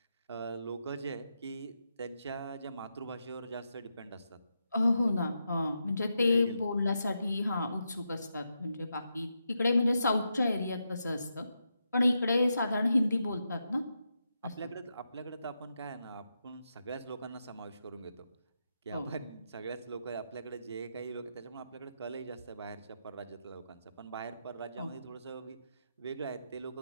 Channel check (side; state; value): both; inverted; correlation -0.85